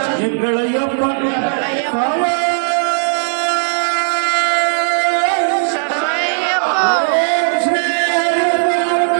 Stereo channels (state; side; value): silent; left; digital silence